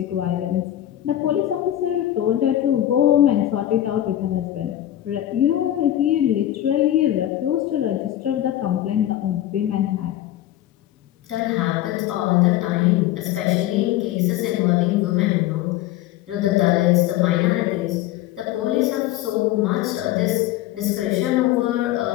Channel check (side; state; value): right; quieter; 13.2 dB